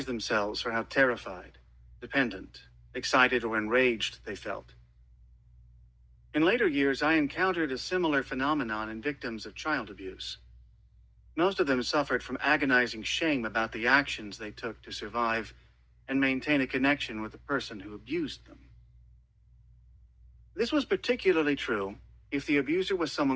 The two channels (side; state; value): both; identical; correlation 1.00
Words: themselves for how terrified, dependent, excited, or enraged they felt. In later years, I encountered a similar phenomenon in victims of child abuse. Most of them suffered from agonizing shame about the actions they took to survive and maintain a connection with the person who abused them. This was particularly true if the abuser was